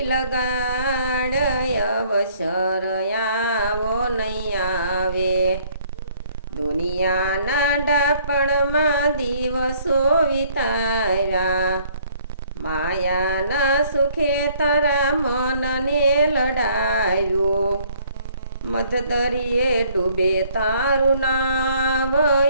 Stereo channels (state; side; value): inverted; both; correlation -0.61